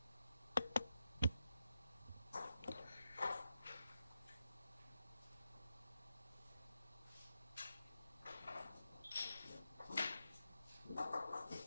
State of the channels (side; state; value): both; inverted; correlation -0.89